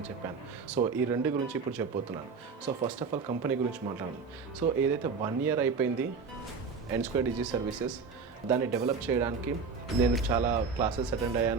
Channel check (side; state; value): left; quieter; 5.0 dB